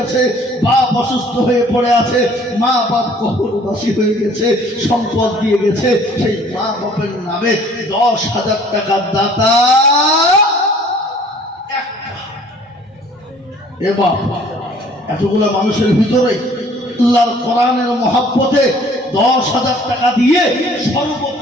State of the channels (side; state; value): both; normal; correlation 0.54